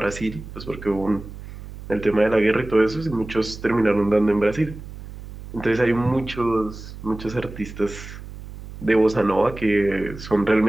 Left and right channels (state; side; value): noise; right; hum, 13 dB below the sound